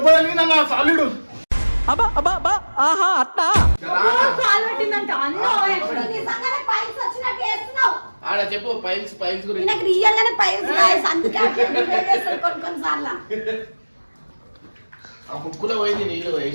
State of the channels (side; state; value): both; inverted; correlation -1.00